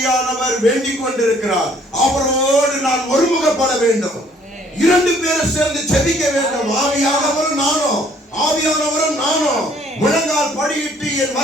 வேண்டிக் கொண்டிருக்கிறார். அவரோடு நான் ஒருமுகப்பட வேண்டும். இரண்டு பேரும் சேர்ந்து ஜெபிக்க வேண்டும். ஆவியானவரும் நானும் முழங்கால் படியிட்டு என்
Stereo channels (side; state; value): both; normal; correlation 0.60